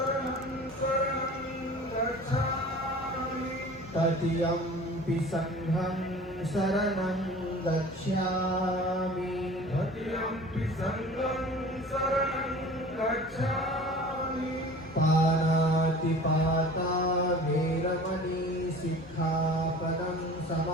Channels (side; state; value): both; normal; correlation 0.42